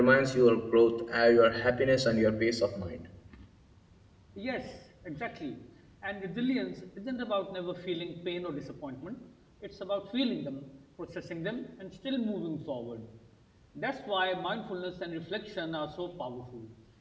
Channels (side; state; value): both; identical; correlation 1.00